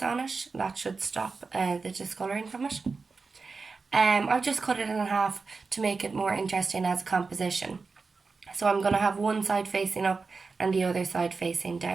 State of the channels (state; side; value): quieter; left; 4.4 dB